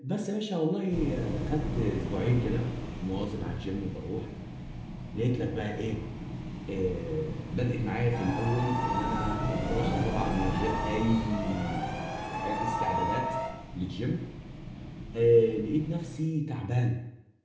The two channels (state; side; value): identical; both; correlation 1.00